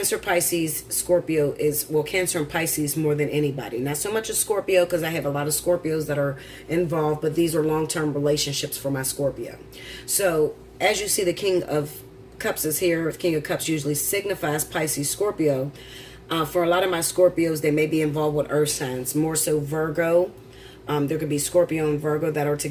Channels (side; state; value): both; identical; correlation 1.00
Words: Pisces, Scorpio is, well, Cancer and Pisces more than anybody. Not so much a Scorpio because I have a lot of Scorpios that are involved, but these are long-term relationships for my Scorpio. So as you see, the King of Cups is here. King of Cups usually signifies Pisces, Scorpio. For a lot of my Scorpios, they may be involved with earth signs, more so Virgo. There could be Scorpio and Virgo that are